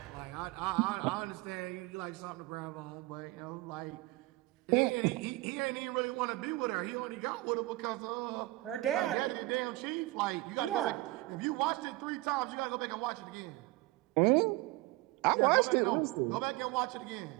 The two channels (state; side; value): quieter; left; 20.4 dB